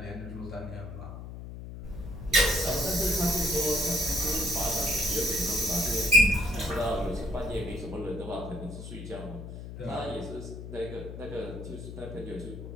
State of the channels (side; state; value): left; noise; hum, 10 dB below the sound